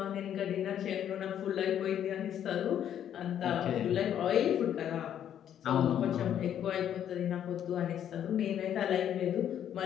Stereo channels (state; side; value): quieter; right; 10.0 dB